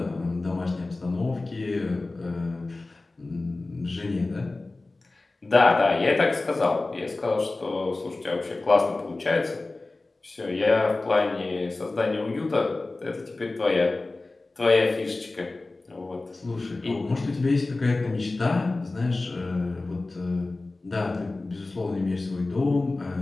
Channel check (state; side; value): quieter; right; 3.2 dB